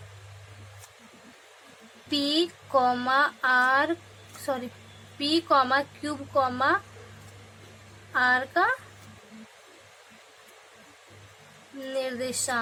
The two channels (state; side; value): identical; both; correlation 1.00